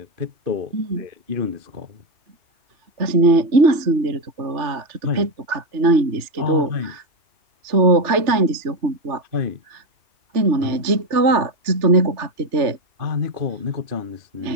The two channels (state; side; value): late; left; 3.3 ms